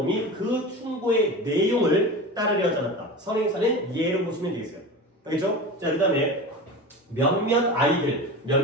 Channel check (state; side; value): normal; both; correlation 0.29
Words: 그 충고의 내용을 따르려 하지 않았다. 선행사는 예로 보시면 되겠어요. 알겠죠? 자, 그 다음에 몇몇 아이들,